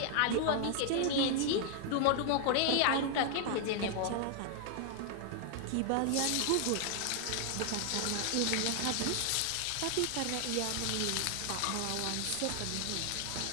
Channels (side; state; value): both; different; correlation 0.00